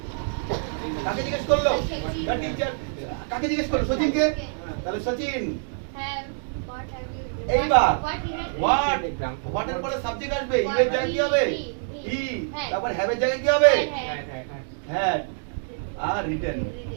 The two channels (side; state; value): left; silent; digital silence